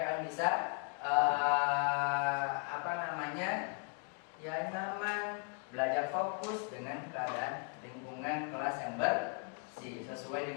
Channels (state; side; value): quieter; right; 38.8 dB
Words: bisa nyaman, belajar fokus dengan keadaan lingkungan kelas yang bersih sesuai